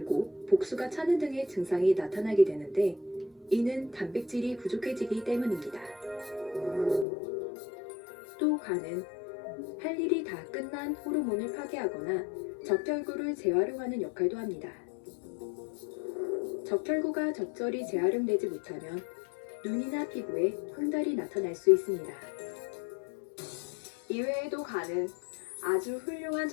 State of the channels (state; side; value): drops out; right; at 7.1 s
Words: 복수가 차는 등의 증상이 나타나게 되는데 이는 단백질이 부족해지기 때문입니다. 또 간은 할 일이 다 끝난 호르몬을 파괴하거나 적혈구를 재활용하는 역할도 합니다. 적혈구가 적절히 재활용되지 못하면 눈이나 피부에 황달이 나타날 수 있습니다. 이외에도 간은 아주 훌륭한